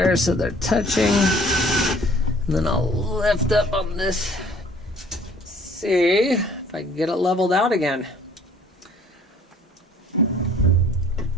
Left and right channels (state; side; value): normal; both; correlation 0.55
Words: so they're touching. And then I'll lift up on this, see if I can get it leveled out again.